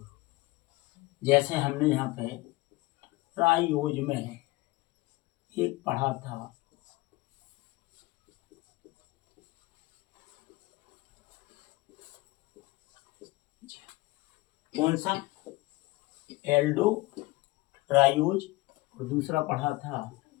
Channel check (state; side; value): quieter; right; 20.9 dB